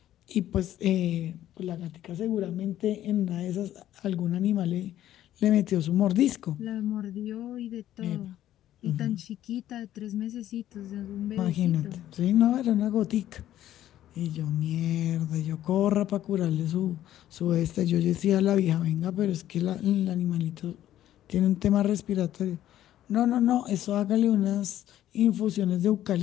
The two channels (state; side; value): quieter; right; 12.5 dB